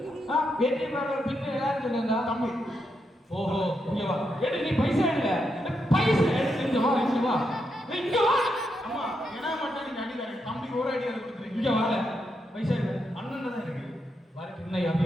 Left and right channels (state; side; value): normal; both; correlation 0.82